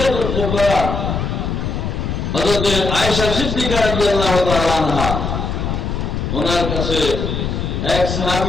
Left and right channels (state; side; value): noise; left; rumble, 2 dB below the sound